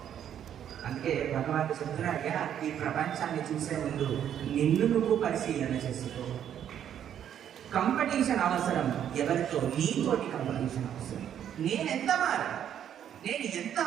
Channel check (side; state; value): left; quieter; 9.7 dB